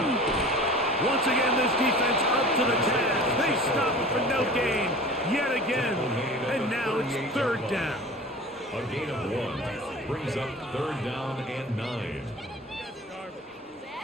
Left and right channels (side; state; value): both; normal; correlation 0.40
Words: Once again, this defense up to the task. They stop it for no gain yet again. And now it's third down. A gain of 1 brings up third down and 9.